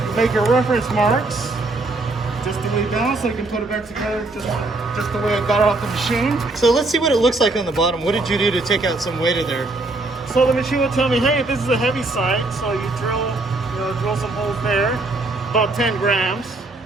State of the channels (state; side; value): quieter; left; 3.1 dB